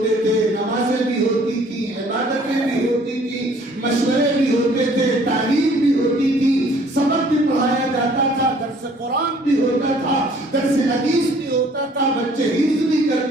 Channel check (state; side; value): normal; both; correlation 0.57